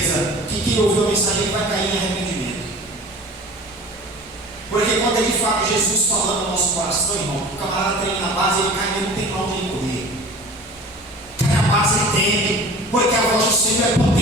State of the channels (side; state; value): both; normal; correlation 0.41